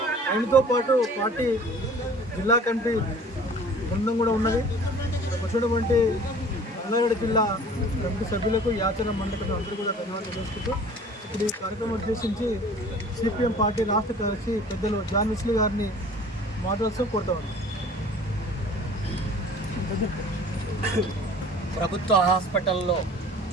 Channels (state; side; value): normal; both; correlation 0.47